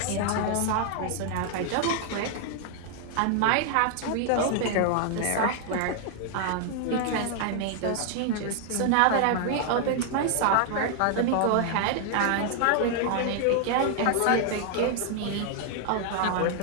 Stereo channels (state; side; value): different; both; correlation 0.00